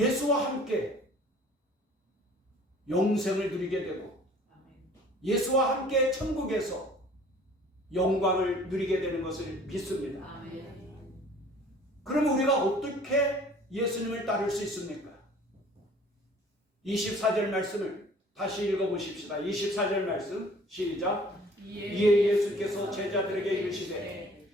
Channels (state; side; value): normal; both; correlation 0.51